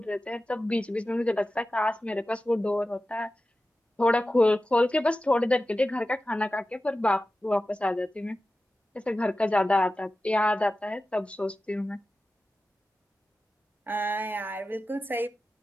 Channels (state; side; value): normal; both; correlation 0.94